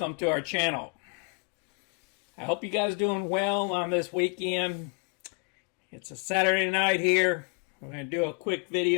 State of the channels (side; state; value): right; quieter; 35.0 dB